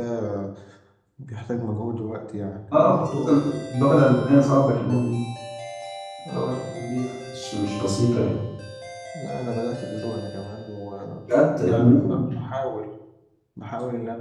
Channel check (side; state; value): both; identical; correlation 1.00